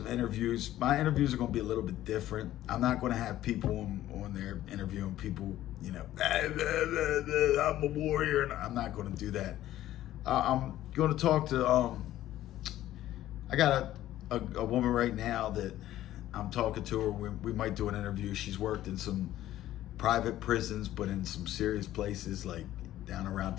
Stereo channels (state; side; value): quieter; right; 13.7 dB